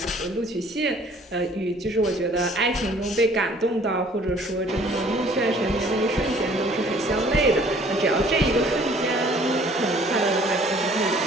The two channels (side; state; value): both; normal; correlation 0.55